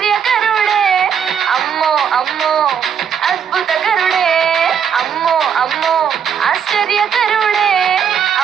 అమ్మో అమ్మో అద్భుతకరుడే, అమ్మో అమ్మో ఆశ్చర్యకరుడే,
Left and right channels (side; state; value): left; quieter; 7.7 dB